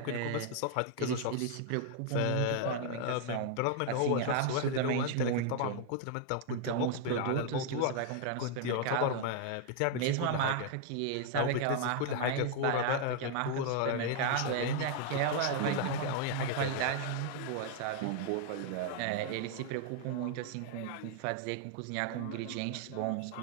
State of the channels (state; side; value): different; both; correlation 0.00